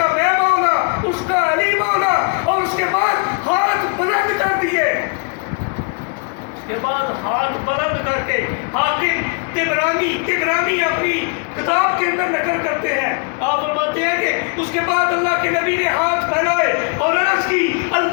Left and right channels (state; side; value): quieter; right; 37.7 dB